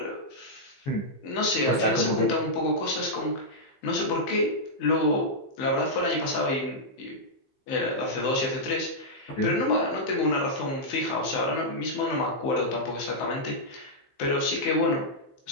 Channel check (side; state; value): right; late; 15 ms